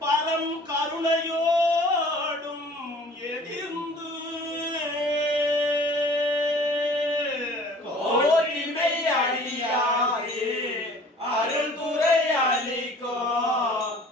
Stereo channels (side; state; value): both; normal; correlation 0.49